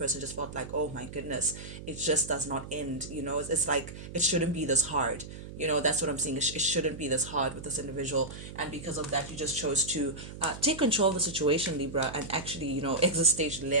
just felt like, oh my goodness, it just does not end. It's like it shouldn't be this hard. That's what I'm seeing. It shouldn't be this hard with this individual, and because of that, you just chose to take control of the situation, Libra, and actually, exit stage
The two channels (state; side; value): noise; right; hum, 12 dB below the sound